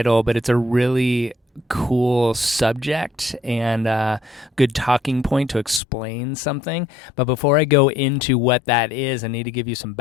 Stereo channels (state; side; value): drops out; right; at 5.8 s